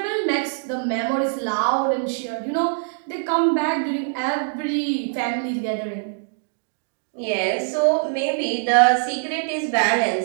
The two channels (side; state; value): left; silent; 63 dB below the other